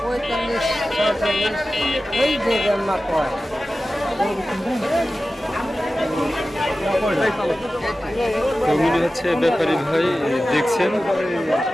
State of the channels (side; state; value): both; normal; correlation 0.95